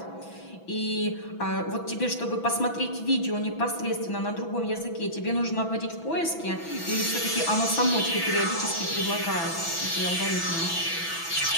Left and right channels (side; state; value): right; late; 6.0 ms